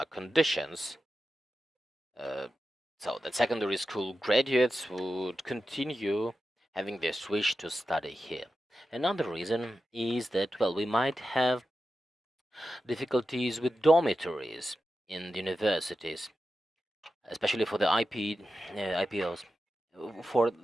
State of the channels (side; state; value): both; normal; correlation 0.91